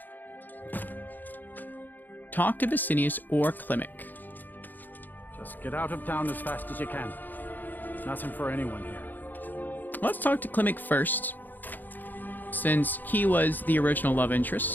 Talk to Vicinius or Klimek. Just get out of town as fast as you can. Nothing for anyone here. Let's talk to Klimek first, since he was the original love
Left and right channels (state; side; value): late; right; 0.087 ms